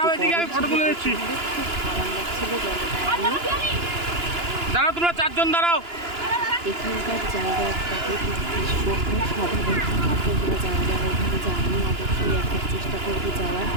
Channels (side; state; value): left; late; 2.9 ms